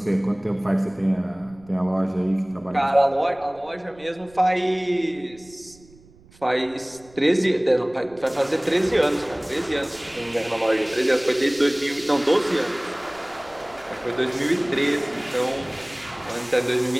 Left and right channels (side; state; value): right; noise; rumble, 26 dB below the sound